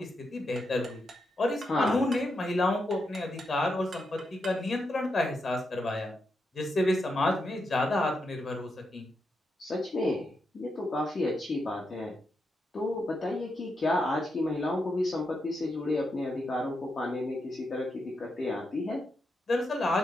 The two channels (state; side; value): normal; both; correlation 0.84